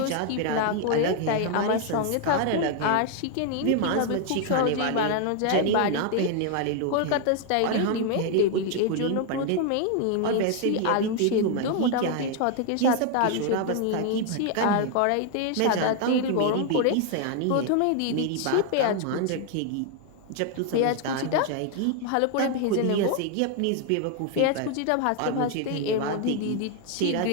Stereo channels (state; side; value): different; both; correlation 0.00